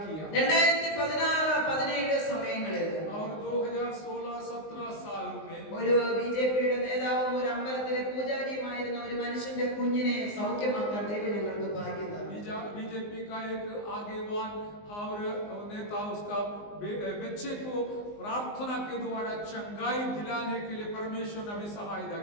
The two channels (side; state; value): right; late; 19 ms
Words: किया. 2016-17 സമയങ്ങളിൽ और 2016-17 साल में ഒരു ബിജെപിയുടെ നേതാവും ഒരു അമ്പലത്തിലെ പൂജാരിയുമായിരുന്ന ഒരു മനുഷ്യന്റെ കുഞ്ഞിനെ സൗഖ്യമാക്കാൻ ദൈവം ഞങ്ങൾക്ക് ഭാഗ്യം തന്നു. बीजेपी का एक आगेवान और नेता उसका बच्चे को प्रार्थना के द्वारा चंगाई दिलाने के लिए परमेश्वर ने हमें सहायता